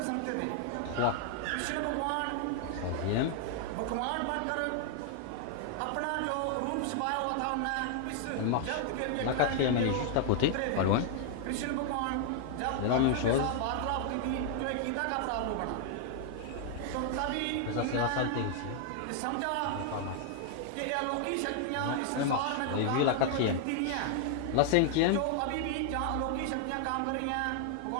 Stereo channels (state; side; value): different; both; correlation 0.00